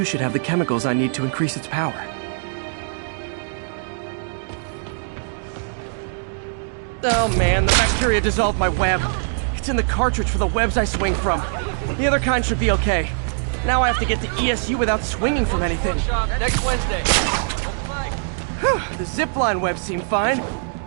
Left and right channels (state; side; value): silent; left; digital silence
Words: should have the chemicals I need to increase its power. Oh man, the bacteria dissolved my web. It's in the cartridge for the webs I swing from. The other kind should be okay. Now I have to get to ESU without swinging from anything. Next Wednesday. The zipline webs seem fine.